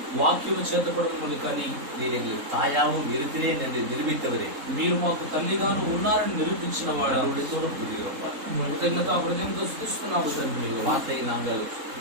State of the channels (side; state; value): left; late; 3.7 ms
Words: వాక్యము చేతపడమని కానీ நீர் எங்களை தாயாவும் இருக்கிறேன் என்று நிரூபித்தவரே, మీరు మాకు తల్లిగాను ఉన్నారని నిరూపించిన వాడు உடைத்தோடும் புரிகிறோம். కృతజ్ఞత హృదయంతో స్తుతిస్తున్నాము తండ్రి. வார்த்தையை நாங்கள்